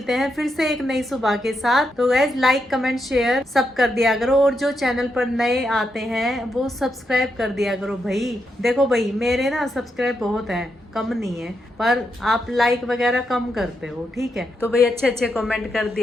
हैं फिर से एक नई सुबह के साथ। तो गाइज लाइक कमेंट शेयर सब कर दिया करो, और जो चैनल पर नए आते हैं वो सब्सक्राइब कर दिया करो भाई। देखो भाई मेरे ना सब्सक्राइब बहुत है, कम नहीं है, पर आप लाइक वगैरह कम करते हो, ठीक है। तो भाई अच्छे अच्छे कमेंट कर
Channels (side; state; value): both; normal; correlation 0.83